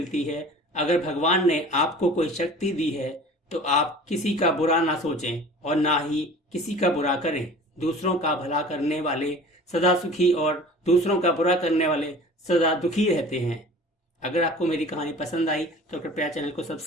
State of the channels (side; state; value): both; normal; correlation 0.43